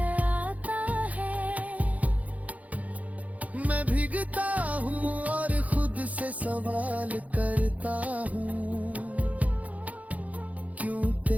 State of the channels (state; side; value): late; left; 0.072 ms